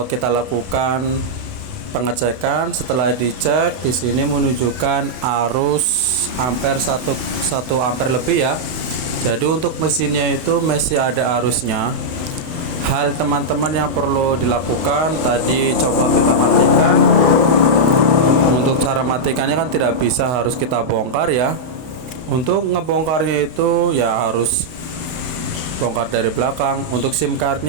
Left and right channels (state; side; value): late; left; 31 ms